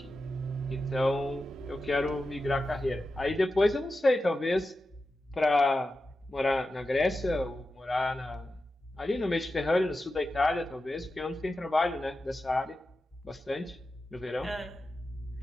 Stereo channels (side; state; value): both; normal; correlation 0.92